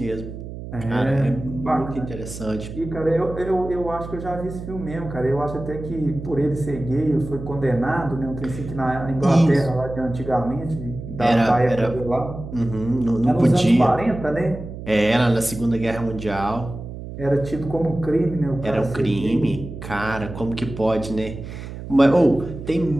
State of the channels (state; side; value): noise; right; hum, 10 dB below the sound